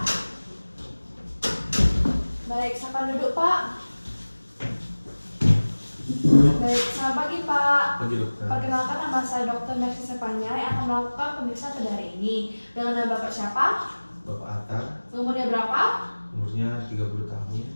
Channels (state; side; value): inverted; both; correlation -1.00